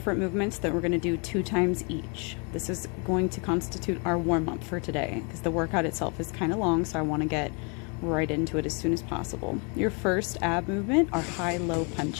movements that we're going to do 2 times each. This is going to constitute our warm-up for today because the workout itself is kind of long, so I want to get right into it as soon as possible. Your first ab movement are high-low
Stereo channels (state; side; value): quieter; right; 34.1 dB